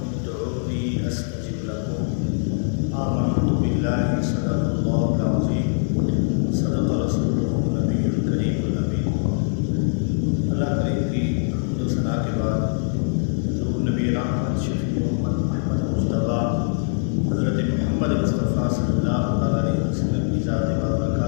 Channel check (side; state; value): right; silent; 55 dB below the other